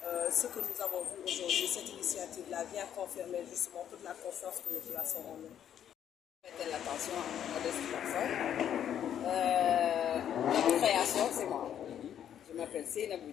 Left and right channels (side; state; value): right; quieter; 9.8 dB